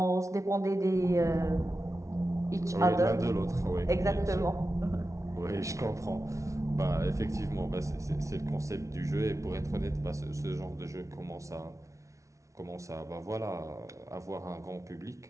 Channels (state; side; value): late; left; 0.15 ms